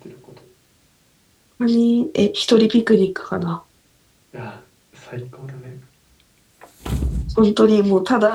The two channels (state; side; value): identical; both; correlation 1.00